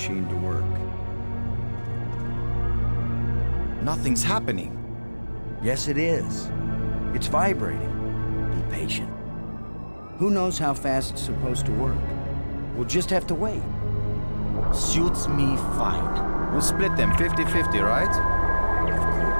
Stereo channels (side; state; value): both; inverted; correlation -1.00